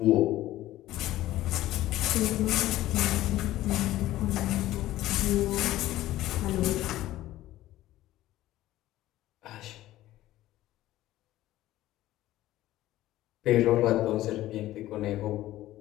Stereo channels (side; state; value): right; quieter; 15.1 dB